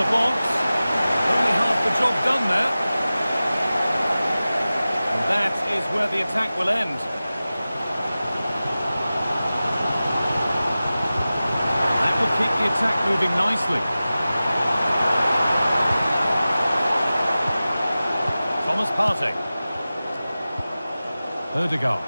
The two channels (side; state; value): both; inverted; correlation -0.96